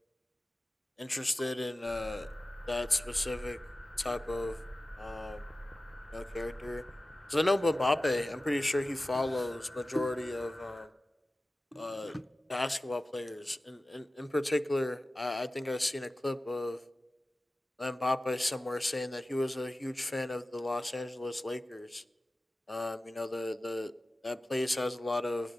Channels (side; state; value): both; normal; correlation 0.96